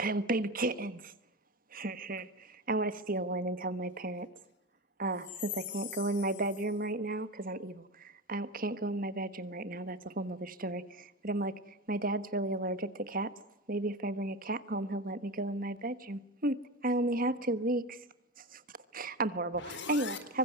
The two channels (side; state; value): both; normal; correlation 0.24